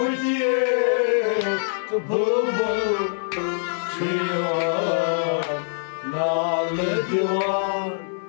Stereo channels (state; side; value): silent; right; 55 dB below the other